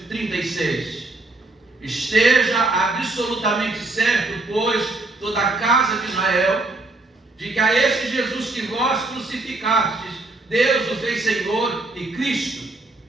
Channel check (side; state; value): left; quieter; 3.1 dB